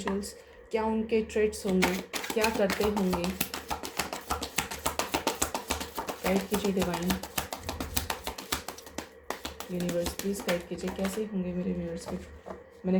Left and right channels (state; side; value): identical; both; correlation 1.00